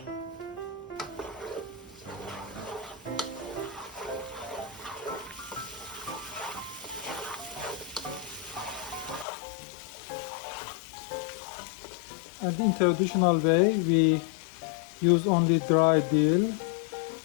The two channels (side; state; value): right; drops out; at 9.2 s